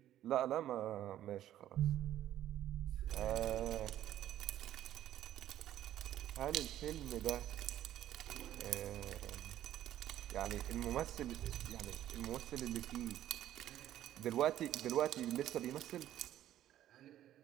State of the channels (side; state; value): left; quieter; 12.4 dB